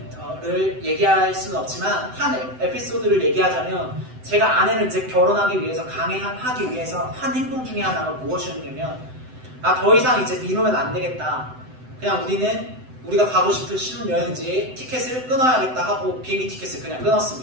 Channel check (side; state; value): left; late; 7.9 ms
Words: 얘기할 수는 없지만 한 에피소드를 얘기하자면 제가 아내를 이제 결혼하기 위해서 강행하기 위해서 한 행동 중에 하나가 무엇이었냐면 더 이상 이제 미루면 안 되겠다. 그냥 우리가 가고 싶은 신혼여행지에 티켓을 끊어야겠다 하고 비행기 티켓을 그냥